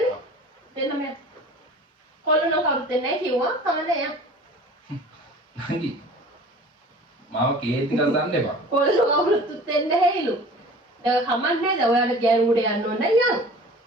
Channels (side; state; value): both; normal; correlation 0.43